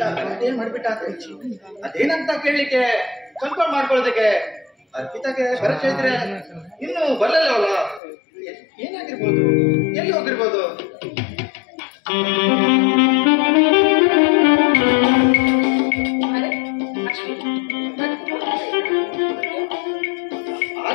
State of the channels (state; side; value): drops out; right; at 8.0 s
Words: ಏನ್ ಮಾಡ್ಬಿಟ್ಟ ಅಂತ ಅದೇನಂತ ಕೇಳಲಿಕ್ಕೆ ಕನ್ಫರ್ಮ್ ಮಾಡ್ಕೊಳ್ಳೋದಕ್ಕೆ ಅರ್ಪಿತಾಗೆ ಬರಕ್ ಹೇಳಿದ್ರೆ ಇನ್ನು ಬರಲ್ಲ ಅವಳ ಏನಾಗಿರ್ಬೋದು, ಎಲ್ಲಿ ಹೋಗಿರ್ಬೋದು?